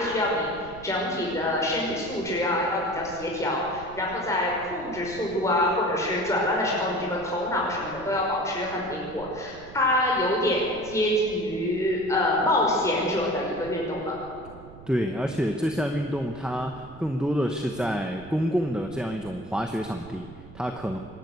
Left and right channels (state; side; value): noise; right; rumble, 18 dB below the sound